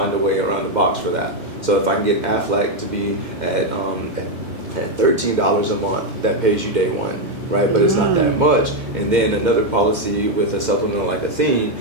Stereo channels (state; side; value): late; left; 2.2 ms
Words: a way around the box for that. So if I can get Aflac to be at $13 a month, that pays you day one, right? But it's not that much. And then another policy with a supplemental like a theme